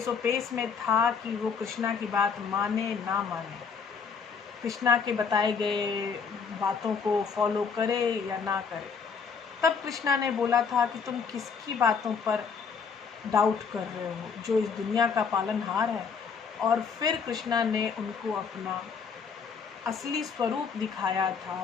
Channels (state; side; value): quieter; right; 5.9 dB